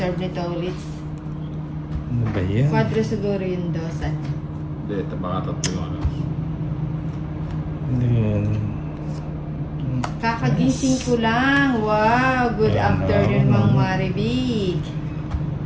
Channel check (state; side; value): identical; both; correlation 1.00